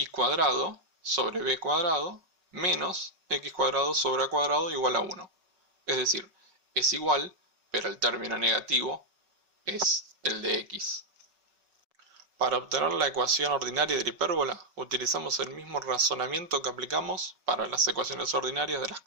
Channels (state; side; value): late; left; 5.3 ms